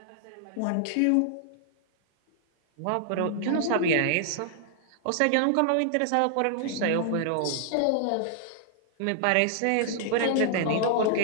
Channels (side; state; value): both; different; correlation -0.01